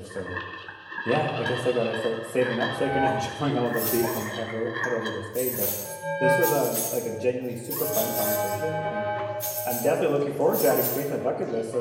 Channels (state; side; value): identical; both; correlation 1.00